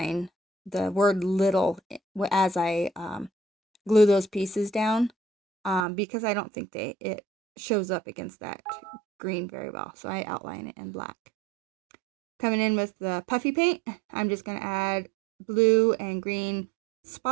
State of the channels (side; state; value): left; drops out; at 5.9 s